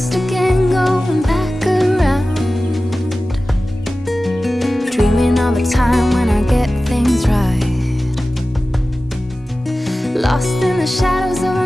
again, going back around, dreaming of a time when I get things right. Lost in the shadows of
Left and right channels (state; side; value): normal; both; correlation 0.96